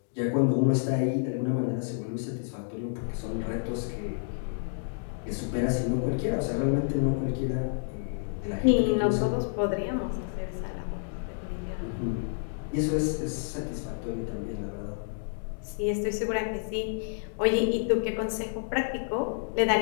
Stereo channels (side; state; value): right; silent; digital silence